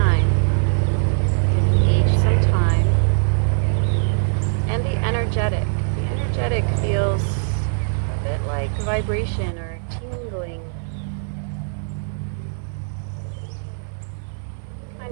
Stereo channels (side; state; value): left; silent; digital silence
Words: Give each some time. And the energetic. The energetic feels a bit like vibration or tingling.